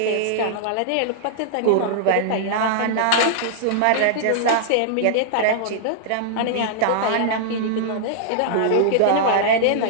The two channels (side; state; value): both; different; correlation -0.01